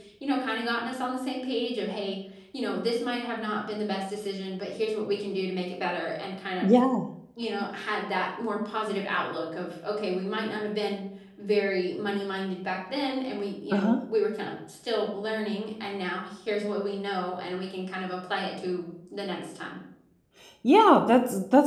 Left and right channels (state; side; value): identical; both; correlation 1.00